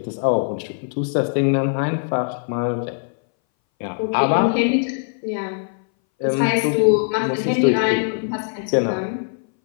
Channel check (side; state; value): right; silent; 62 dB below the other